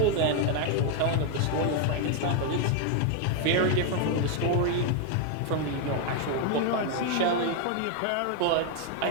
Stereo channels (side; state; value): both; different; correlation 0.01